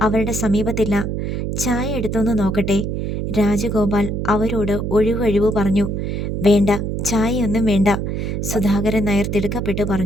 അവരുടെ സമീപത്തില്ല. ചായ എടുത്തൊന്ന് നോക്കട്ടെ? രാജഗോപാൽ അവരോട് ഒഴിവൊഴിവ് പറഞ്ഞു. വേണ്ട, ചായയൊന്നും വേണ്ട, സുധാകരൻ നായർ തിടുക്കപ്പെട്ട്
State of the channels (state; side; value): noise; right; hum, 2 dB below the sound